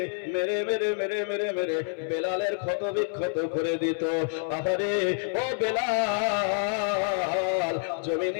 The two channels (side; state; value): right; silent; 60 dB below the other